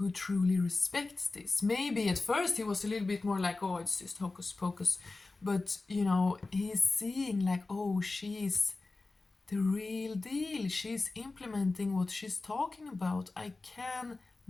truly respects this. Maybe at first he was a little bit more like, oh, it's just hocus pocus, but, you know, he's seeing like, oh, she's the real deal. She's implementing what she's talking about. I can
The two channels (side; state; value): right; quieter; 3.5 dB